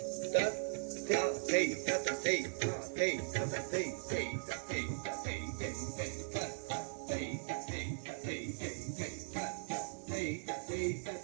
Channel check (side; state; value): left; silent; 52 dB below the other